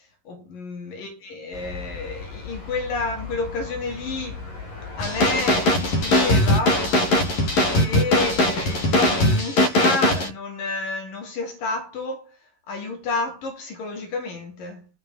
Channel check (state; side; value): late; right; 11 ms